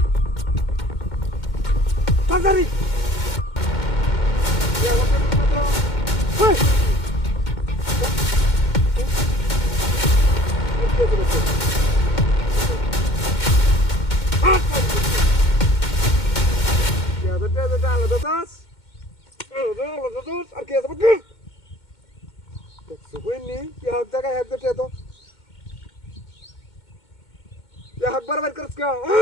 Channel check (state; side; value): late; right; 2.2 ms